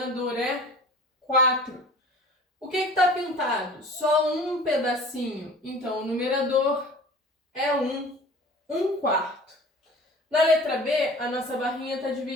é 4. O que está pintado? Só um pedacinho. Então, o numerador é 1. 1/4. Na letra B, a nossa barrinha está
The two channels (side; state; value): both; normal; correlation 0.43